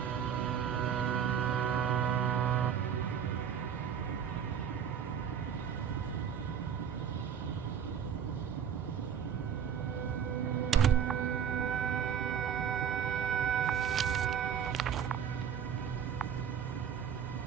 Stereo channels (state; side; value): quieter; left; 8.1 dB